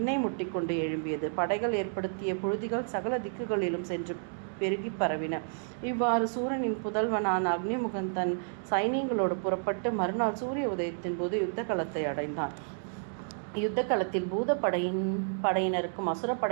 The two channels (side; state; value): left; silent; digital silence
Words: முட்டிக்கொண்டு எழும்பியது. படைகள் ஏற்படுத்திய புழுதிகள் சகல திக்குகளிலும் சென்று பெருகி பரவின. இவ்வாறு சூரனின் புதல்வனான அக்னிமுகன் தன் சைனியங்களோடு புறப்பட்டு மறுநாள் சூரிய உதயத்தின் போது யுத்த களத்தை அடைந்தான். யுத்த களத்தில் படையினருக்கும்